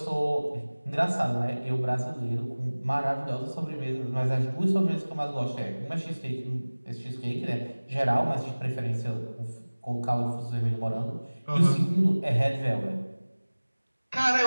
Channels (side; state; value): both; inverted; correlation -1.00